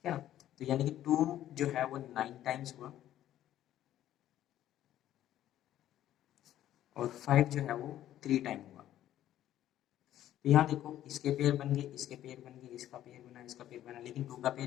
है ना। तो यानी कि 2 जो है वो 9 टाइम्स हुआ और 5 जो है वो 3 टाइम हुआ। तो यहाँ देखो इसके पेयर बन गए, इसके पेयर बन गए, इसका पेयर बना, इसका पेयर बना, लेकिन 2 का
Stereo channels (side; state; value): right; quieter; 12.5 dB